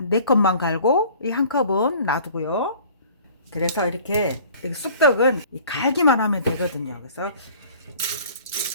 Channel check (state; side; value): inverted; both; correlation -0.49